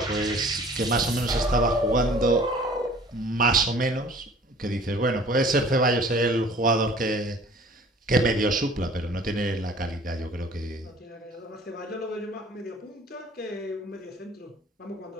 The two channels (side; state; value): both; normal; correlation 0.50